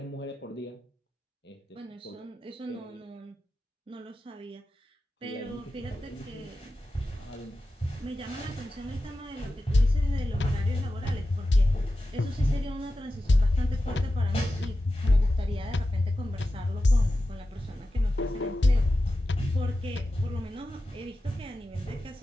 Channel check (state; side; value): normal; both; correlation 0.93